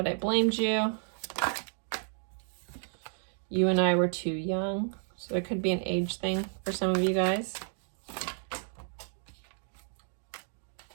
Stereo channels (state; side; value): silent; left; digital silence